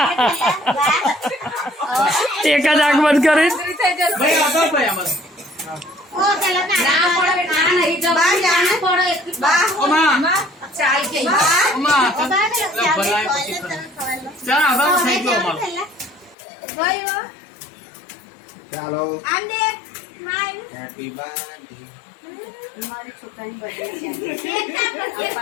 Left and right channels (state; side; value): drops out; right; at 16.4 s